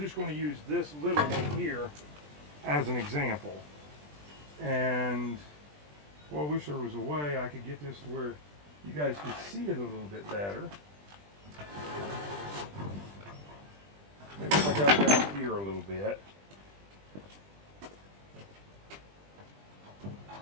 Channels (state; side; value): late; left; 20 ms